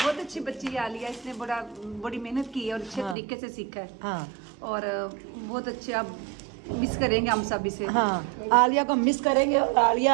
अच्छी बच्ची है आलिया, इसने बड़ी मेहनत की है और अच्छे तरीके से सीखा है। हाँ और बहुत अच्छे, आप मिस करेंगे हम सब इसे। हाँ, आलिया को मिस करेंगे। और आलिया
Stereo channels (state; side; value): drops out; left; at 3.2 s